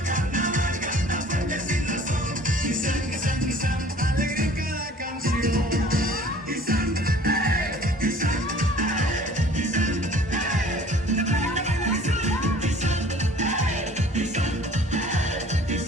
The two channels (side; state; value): both; normal; correlation 0.50